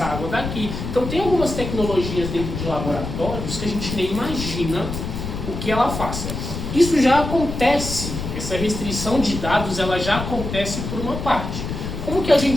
água daqui. Então tem algumas tecnologias dentro de laboratórios que a gente nem imagina o que ela faça. Isso já acontece, essa restrição de dados ela já acontece por uma parte. Como que a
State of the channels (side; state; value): left; noise; rumble, 6 dB below the sound